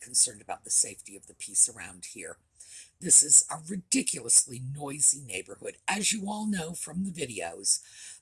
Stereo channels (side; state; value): both; identical; correlation 1.00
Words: about the safety of the piece around here. This is a ridiculously noisy neighborhood, as you all know from the videos,